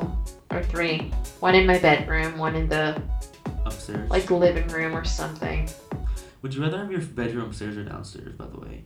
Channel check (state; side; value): identical; both; correlation 1.00